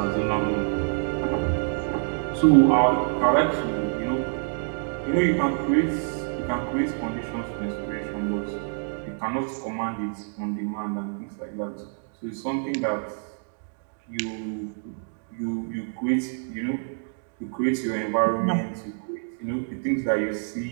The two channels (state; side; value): silent; left; digital silence